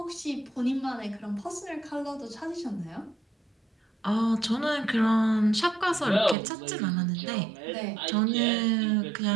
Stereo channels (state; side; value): drops out; left; at 6.4 s